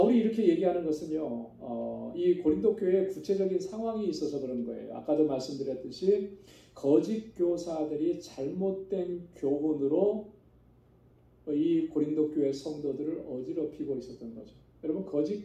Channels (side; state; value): both; identical; correlation 1.00